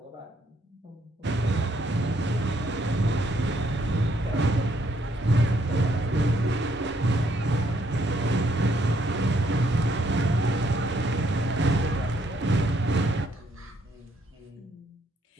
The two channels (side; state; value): both; normal; correlation 0.71